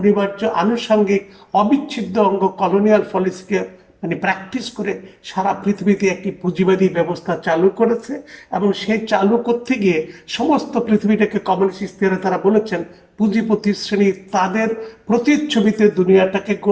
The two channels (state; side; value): identical; both; correlation 1.00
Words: আনুষঙ্গিক অবিচ্ছেদ্য অঙ্গ কলোনিয়াল পলিসিকে প্র্যাকটিস করে সারা পৃথিবীতে একটি পুঁজিবাদী ব্যবস্থা চালু করেছে। এবং সেই চালু করতে গিয়ে সমস্ত পৃথিবীটাকে কমিউনিস্ট ইস্তেহারে তারা বলেছেন পুঁজিপতি শ্রেণী তাদের প্রতিচ্ছবিতে দুনিয়াটাকে